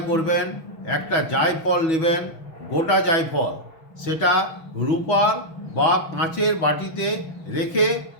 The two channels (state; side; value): late; right; 6.1 ms